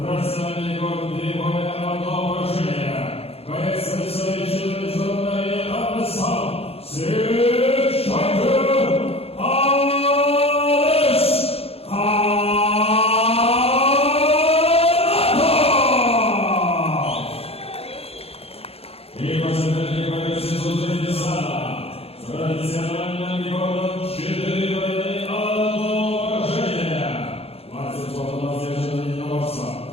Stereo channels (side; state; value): right; late; 0.29 ms